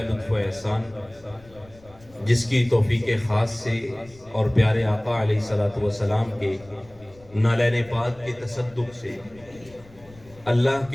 لطف و احسان، جس کی توفیق خاص سے اور پیارے آقا علیہ الصلوۃ والسلام کے نالین پاک کے تصدق سے اللہ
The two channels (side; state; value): left; noise; rumble, 24 dB below the sound